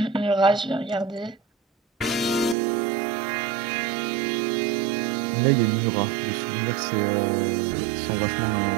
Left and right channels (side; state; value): left; drops out; at 2.6 s